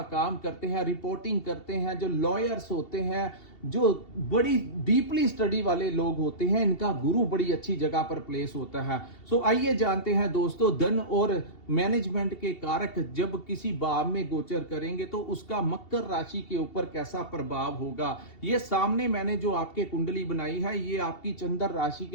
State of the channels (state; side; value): late; right; 2.7 ms